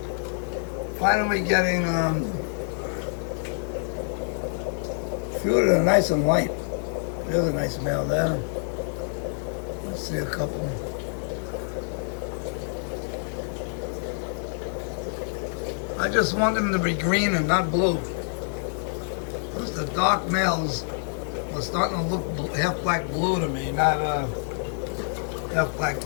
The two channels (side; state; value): right; silent; digital silence